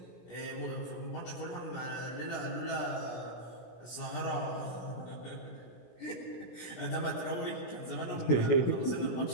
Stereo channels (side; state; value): right; late; 17 ms